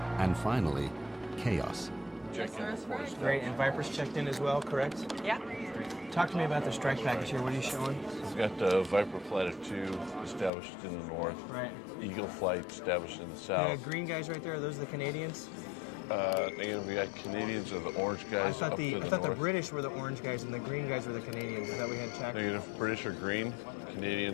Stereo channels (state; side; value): drops out; right; at 10.5 s